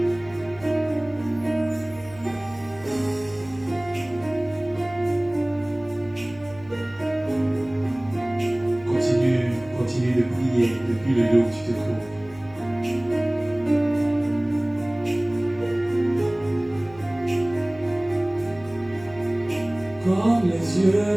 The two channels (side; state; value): left; noise; hum, 21 dB below the sound